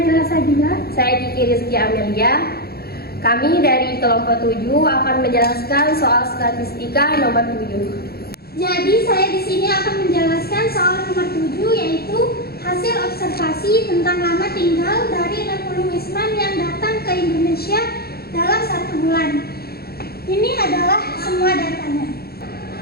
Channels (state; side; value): late; right; 0.45 ms